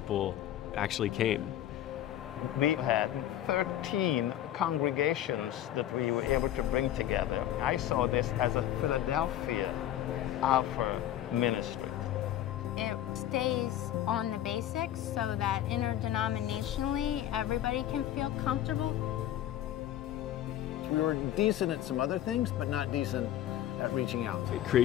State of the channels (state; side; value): quieter; right; 12.1 dB